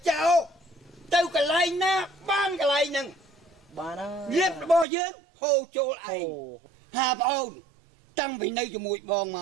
ចោលទៅកន្លែងណាបានកន្លែងហ្នឹងបានលៀបរបស់យើងហូរចូលឯងហាបងតាំងពីនៅជាមួយបងម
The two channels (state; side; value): drops out; left; at 4.9 s